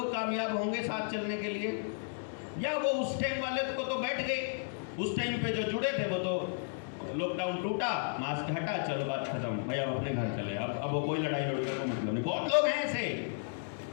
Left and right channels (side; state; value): right; silent; digital silence